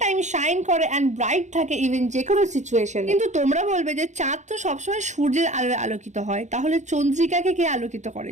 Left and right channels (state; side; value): late; left; 0.34 ms